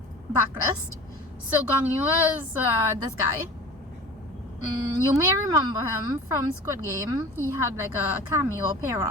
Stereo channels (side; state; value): both; normal; correlation 0.39